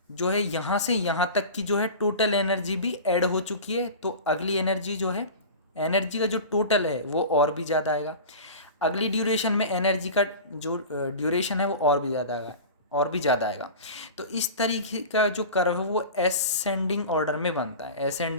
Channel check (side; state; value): both; inverted; correlation -0.33